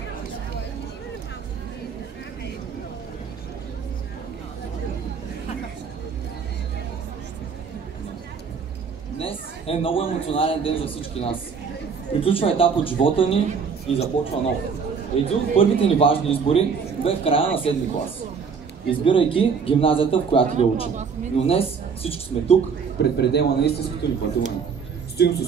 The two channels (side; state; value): left; quieter; 5.9 dB